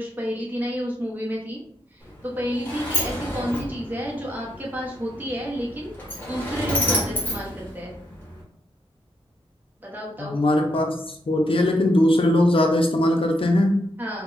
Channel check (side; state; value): both; normal; correlation 0.77